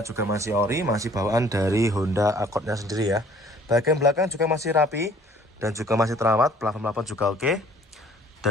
masih ori, masih bawaan dari Honda Accord-nya sendiri ya. Bagian belakang juga masih rapi dan juga masih terawat, plafon juga oke.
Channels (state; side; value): normal; both; correlation 0.56